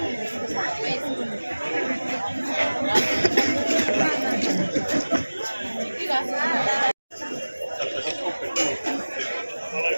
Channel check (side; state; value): both; inverted; correlation -1.00